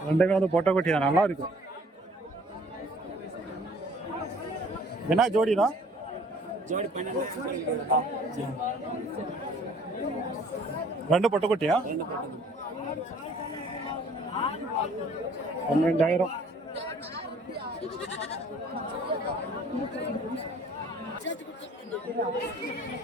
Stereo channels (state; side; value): normal; both; correlation 0.55